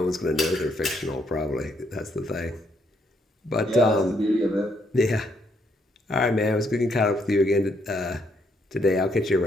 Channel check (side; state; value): both; normal; correlation 0.73